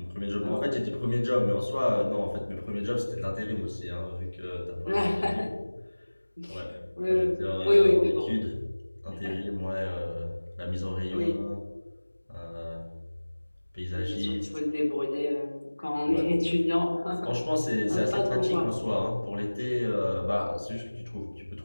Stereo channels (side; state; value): both; inverted; correlation -1.00